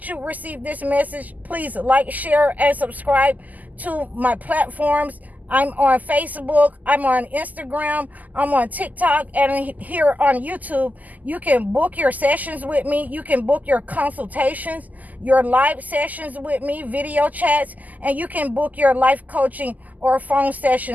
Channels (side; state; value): left; late; 0.080 ms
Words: you receive this message. Please like, share, and subscribe to my platforms. I'm on Facebook, I'm on Instagram, I'm on TikTok, and here on YouTube. You can book your sessions with me. You can book your consultations, your live sessions with me, video chats, and you can book your life coaching or phone